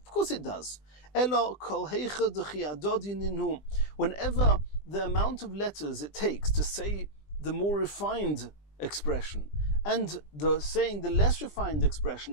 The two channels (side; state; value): right; late; 20 ms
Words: Of course it does. Whenever the amount of letters it takes to say the more refined expression and saying the less refined